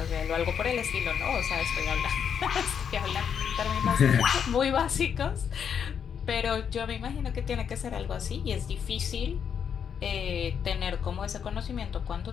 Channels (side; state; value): right; quieter; 7.6 dB